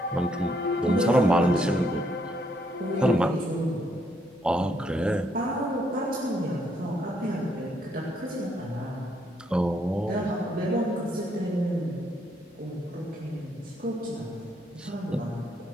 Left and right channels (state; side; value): normal; both; correlation 0.73